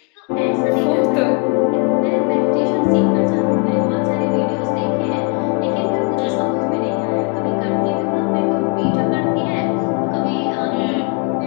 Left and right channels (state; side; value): quieter; right; 33.3 dB